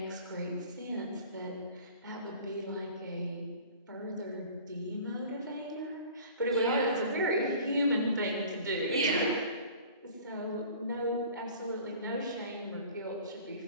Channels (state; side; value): inverted; both; correlation -0.45